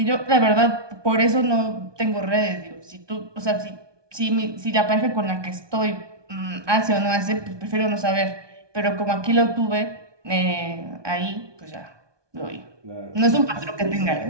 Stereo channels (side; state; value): left; late; 1.2 ms